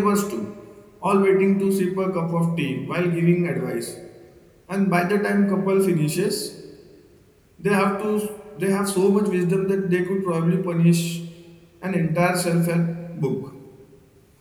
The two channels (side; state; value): both; identical; correlation 1.00